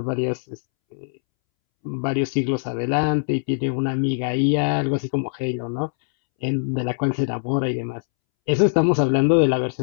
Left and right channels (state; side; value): silent; right; 64 dB below the other